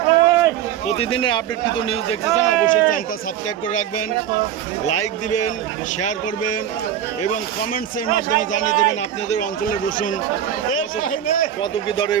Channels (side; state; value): left; quieter; 10.2 dB